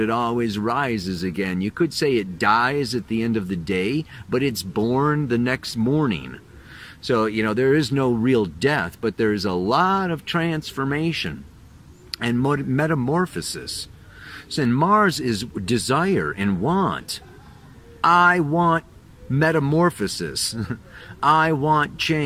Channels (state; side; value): identical; both; correlation 1.00